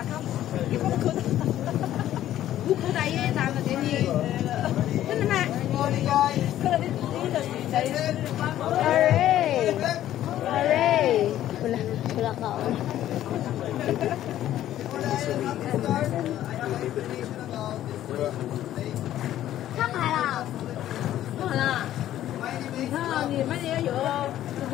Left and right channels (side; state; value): right; quieter; 12.6 dB